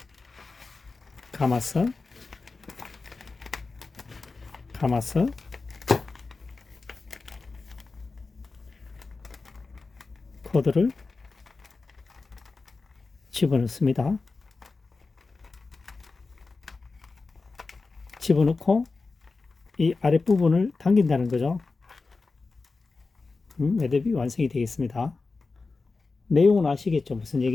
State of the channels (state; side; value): quieter; right; 4.0 dB